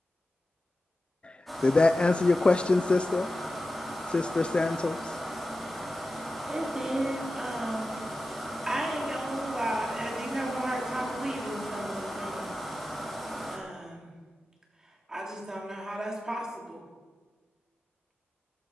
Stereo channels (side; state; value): both; normal; correlation 0.93